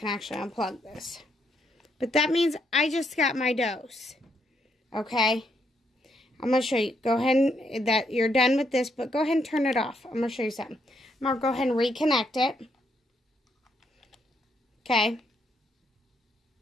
actually unplug this. But that means I just got my dose. Okay? I'm going to show you. Go ahead and, that you're done with this, but go ahead and turn it off. I'm going to show you something. I'm going to go ahead and reconnect it. Okay?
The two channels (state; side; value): normal; both; correlation 0.75